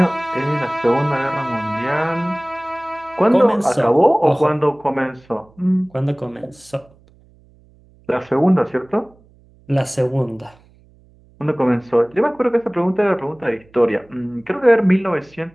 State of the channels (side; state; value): right; noise; hum, 29 dB below the sound